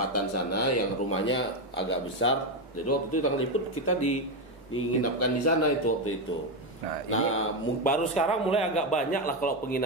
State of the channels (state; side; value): normal; both; correlation 0.09